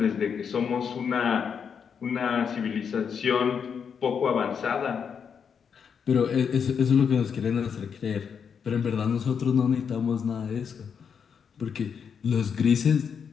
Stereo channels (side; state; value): right; quieter; 6.9 dB